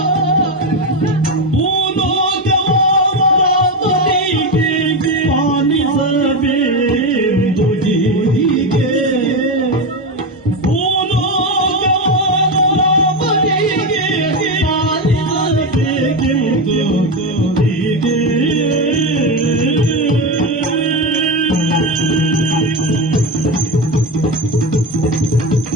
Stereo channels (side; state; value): both; normal; correlation 0.14